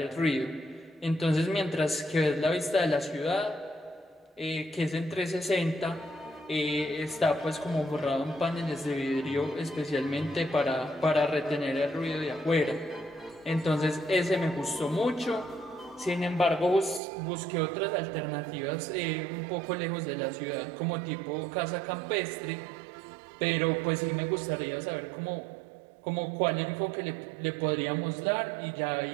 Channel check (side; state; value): left; drops out; at 17.0 s